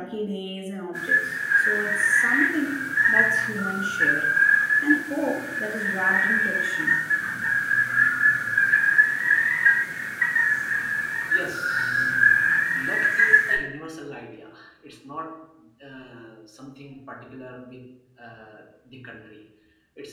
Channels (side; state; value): both; identical; correlation 1.00